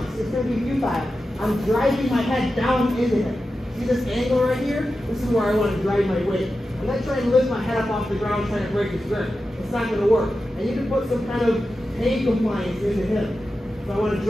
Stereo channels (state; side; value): normal; both; correlation 0.92